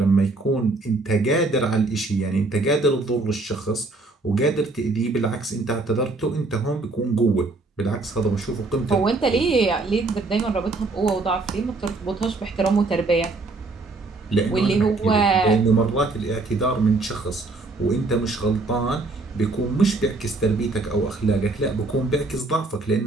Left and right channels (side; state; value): left; quieter; 3.3 dB